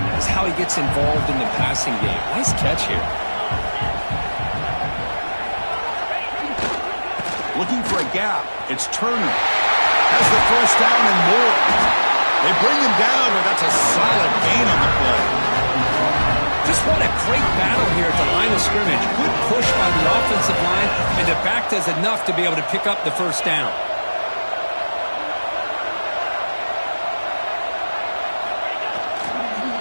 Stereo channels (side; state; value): both; inverted; correlation -1.00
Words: is how he gets involved in the passing game. Nice catch here. Looking for a gap. It's Turner. Has the first down and more. They bring him down, but that's a solid gain on the play. Just what a great battle here at the line of scrimmage. Good push by the offensive line, and the back does enough to be able to pick up the first down.